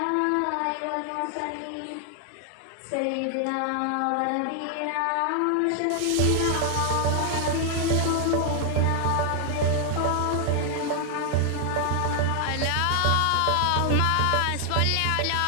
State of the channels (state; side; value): different; both; correlation 0.00